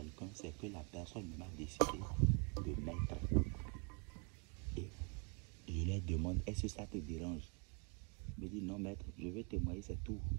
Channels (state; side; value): quieter; left; 33.6 dB